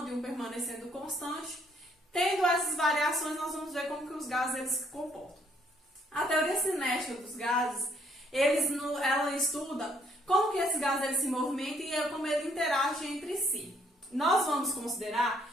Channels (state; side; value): normal; both; correlation 0.68